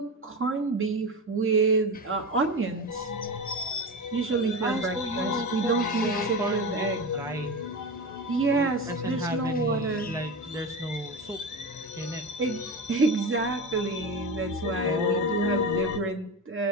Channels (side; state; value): both; normal; correlation 0.24